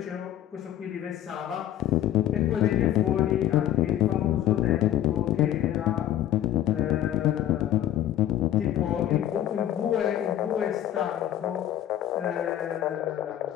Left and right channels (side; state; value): right; quieter; 12.0 dB